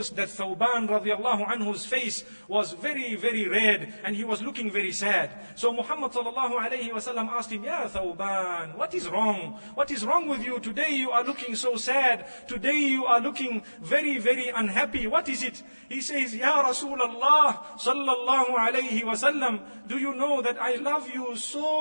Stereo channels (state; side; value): inverted; both; correlation -1.00